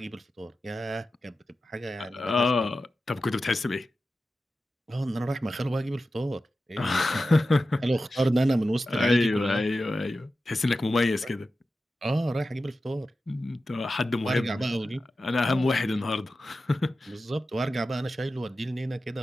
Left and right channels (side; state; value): both; normal; correlation 0.93